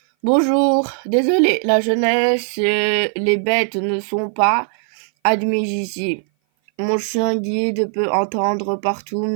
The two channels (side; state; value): left; silent; 58 dB below the other